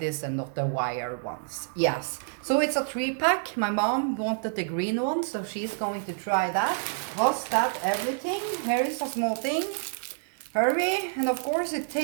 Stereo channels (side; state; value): left; silent; digital silence